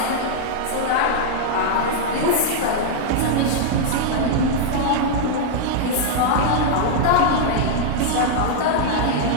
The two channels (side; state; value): both; different; correlation -0.01